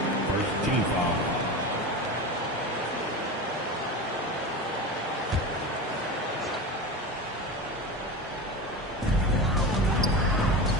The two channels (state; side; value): normal; both; correlation 0.27